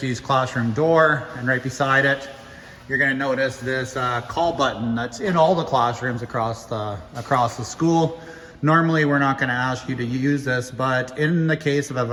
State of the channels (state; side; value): identical; both; correlation 1.00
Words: classroom door, and right beside it, you're gonna notice this call button that's in all the classrooms across the school. Normally, we're not gonna ask you to use this, but in the case of